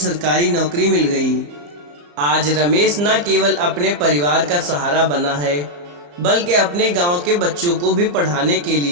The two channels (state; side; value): late; left; 34 ms